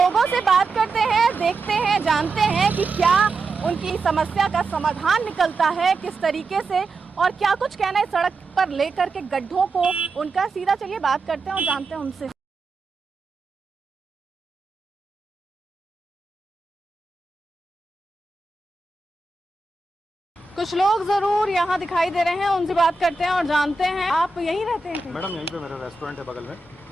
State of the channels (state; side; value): quieter; left; 3.4 dB